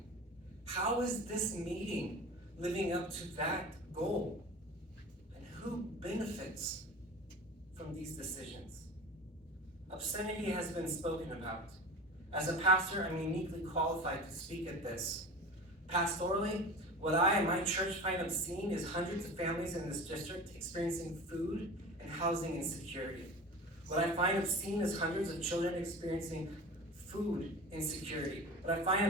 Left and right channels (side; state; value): both; normal; correlation 0.35